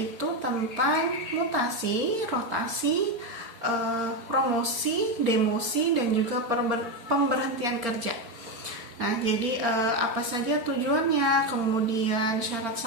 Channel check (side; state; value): left; late; 4.3 ms